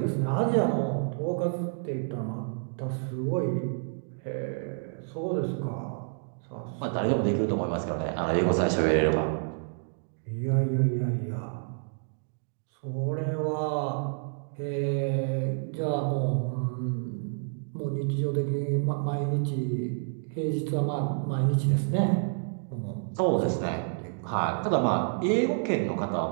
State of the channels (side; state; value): left; silent; digital silence